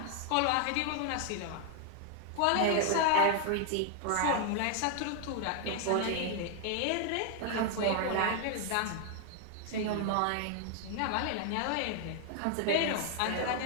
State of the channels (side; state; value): both; different; correlation 0.00